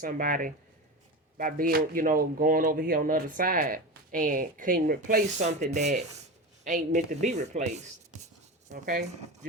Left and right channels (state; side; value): normal; both; correlation 0.24